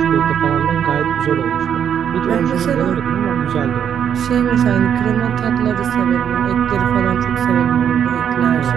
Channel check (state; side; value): quieter; left; 8.6 dB